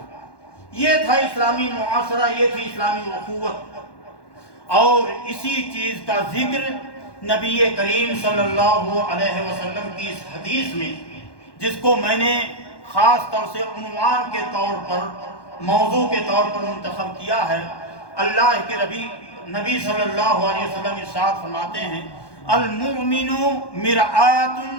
یہ تھا اسلامی معاشرہ، یہ تھی اسلامی اخوت۔ اور اسی چیز کا ذکر نبی کریم صلی اللہ علیہ وسلم کی اس حدیث میں، جس کو میں نے خاص طور سے عنوان کے طور پر، موضوع کے طور پر منتخب کیا ہے، اللہ کے نبی صلی اللہ علیہ وسلم ارشاد فرماتے ہیں المؤمن مرآۃ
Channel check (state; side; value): late; right; 1.1 ms